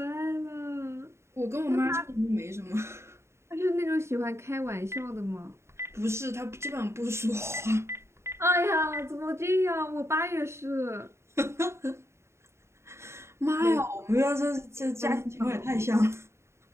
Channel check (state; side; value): late; left; 0.13 ms